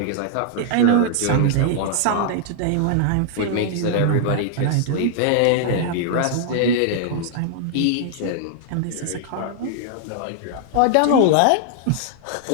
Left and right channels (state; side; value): different; both; correlation -0.01